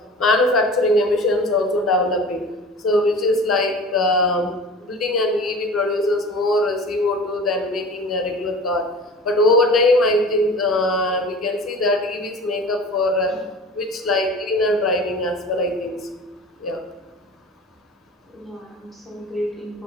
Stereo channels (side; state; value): both; normal; correlation 0.39